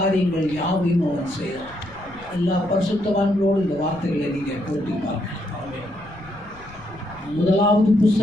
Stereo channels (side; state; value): left; noise; rumble, 22 dB below the sound